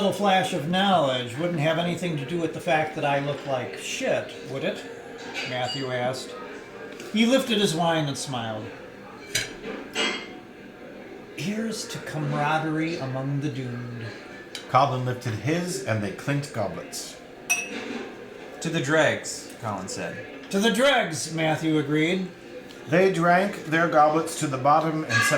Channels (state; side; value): identical; both; correlation 1.00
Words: flash of knowledge wouldn't have anything to do with the fact that I look like shit, would it? Matthew asked. He lifted his wine and smiled. Here's to camaraderie among the doomed. Colin lifted his, and they clinked goblets. To the dregs, Colin said. To the dregs, Matthew agreed. They drank their goblets to the bottom and